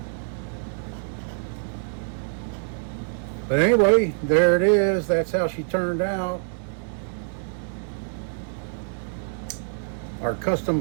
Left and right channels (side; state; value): left; silent; digital silence